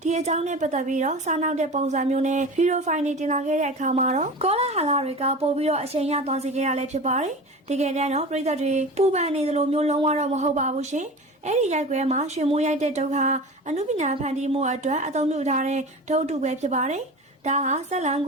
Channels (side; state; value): both; normal; correlation 0.33